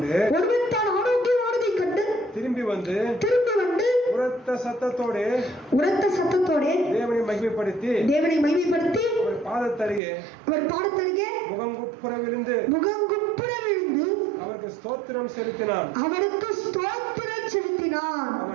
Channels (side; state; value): left; drops out; at 10.0 s